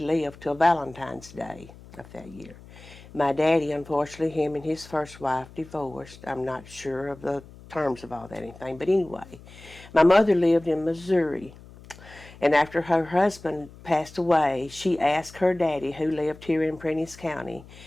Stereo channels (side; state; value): left; noise; hum, 20 dB below the sound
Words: till Valentine's Day of that year. My daddy, unfortunately, him and his first wife divorced. I'm not sure of the terms of all that anything, but anyway, my mother lived in Missouri. And after her husband passed away, she asked her daddy, who lived here in Prentiss County,